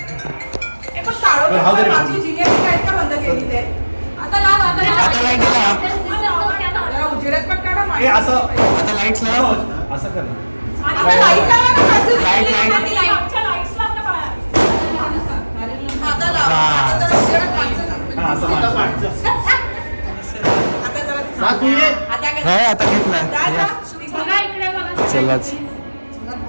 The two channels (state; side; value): inverted; both; correlation -1.00